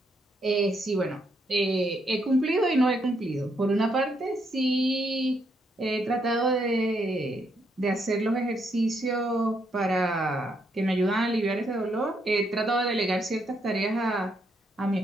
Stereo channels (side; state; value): both; normal; correlation 0.76